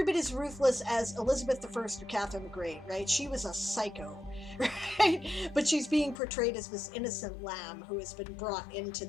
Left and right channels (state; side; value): drops out; right; at 6.2 s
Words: bit as ruthless as Elizabeth I or Catherine the Great, right? She was a psycho, right? But she's being portrayed as this innocent lamb who has been brought into